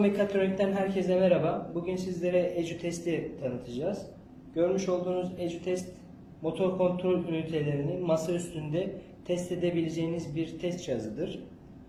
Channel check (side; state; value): both; identical; correlation 1.00